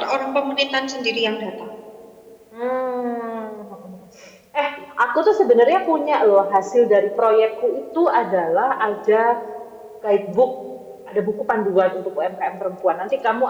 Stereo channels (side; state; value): both; identical; correlation 1.00